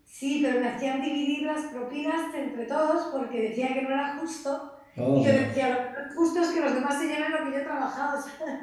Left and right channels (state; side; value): identical; both; correlation 1.00